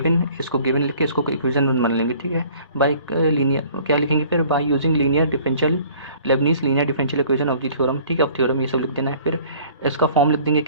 इसको गिवन लिख के इसको इक्वेशन मान लेंगे, ठीक है। बाय लीनियर क्या लिखेंगे फिर, by using linear differential Lebanese linear differential equation of the theorem, ठीक है। अब थ्योरम ये सब लिख देना है, फिर इसका फॉर्म लिख देंगे,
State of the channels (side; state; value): both; inverted; correlation -0.52